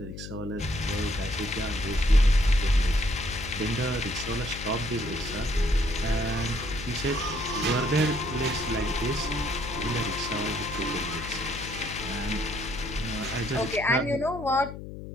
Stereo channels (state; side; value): noise; left; hum, 10 dB below the sound